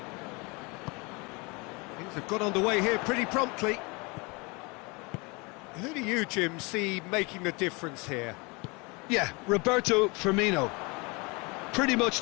Things have got underway here pretty promptly. Who do you, Jim, see making the difference here? Yeah, Roberto Firmino. Pretty much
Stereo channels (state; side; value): quieter; right; 28.0 dB